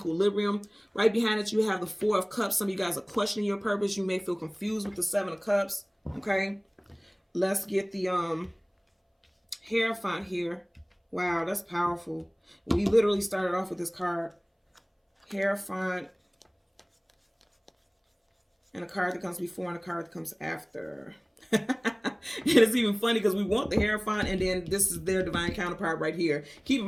Right behind it, you have the 4 of Cups. Some of you guys are questioning your purpose. You may feel confused with the 7 of Cups. Okay, let's get the Hierophant here. Wow, that's powerful. We literally started off with this card, Hierophant, and a card that comes before and a card that comes after. it's even funny because we want the Hierophant, and then this is their divine counterpart right here. Keep in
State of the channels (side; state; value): both; identical; correlation 1.00